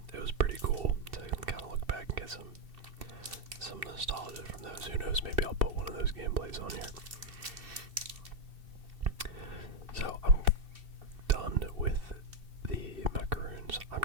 it was pretty cool to kind of look back and get some nostalgia from those. Who knows, maybe I'll put one of those gameplays on here. So I'm done with the Macaroons. I'm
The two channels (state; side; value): late; left; 2.7 ms